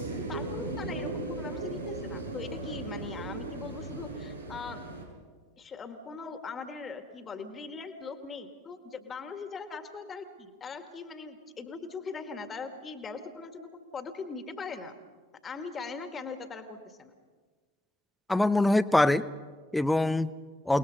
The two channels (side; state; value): both; normal; correlation 0.78